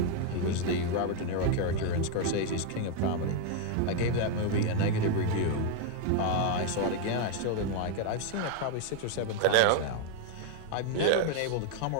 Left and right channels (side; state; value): both; different; correlation 0.01